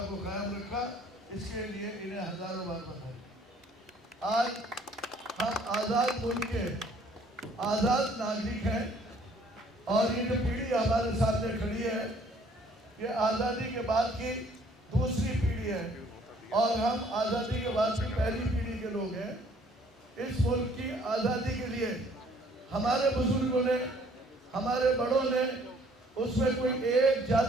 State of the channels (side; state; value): both; normal; correlation 0.59